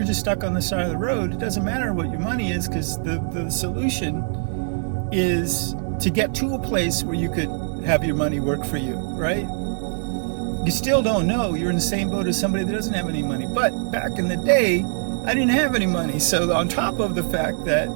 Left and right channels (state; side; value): silent; left; digital silence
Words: just stuck on the side of the road, it doesn't matter what your money is, because the solution is to get to a place where you could have your money work for you, right? You still don't know. You're in the same boat as somebody that doesn't have any money. But back in the day, I didn't have any money. So on top of the fact that